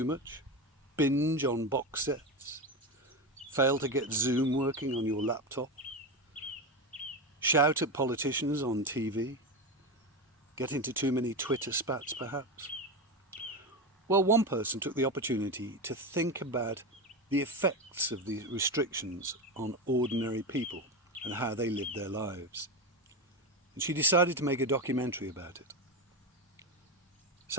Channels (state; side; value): normal; both; correlation 0.17